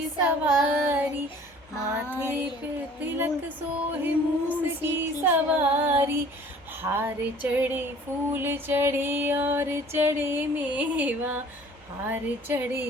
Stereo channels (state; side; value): noise; right; hum, 29 dB below the sound